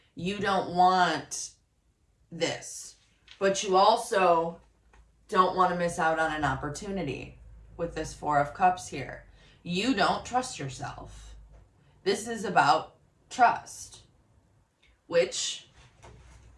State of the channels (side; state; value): both; identical; correlation 1.00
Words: You don't want this. But you also don't want to miss out on an opportunity with this Four of Cups here. You don't trust yourself. This is about trust, which,